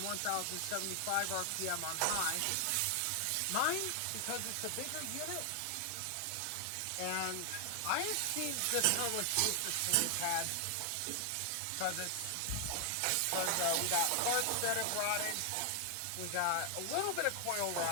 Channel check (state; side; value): different; both; correlation 0.00